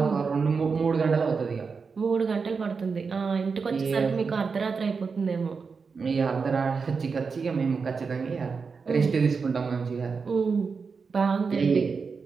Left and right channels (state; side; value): quieter; left; 5.1 dB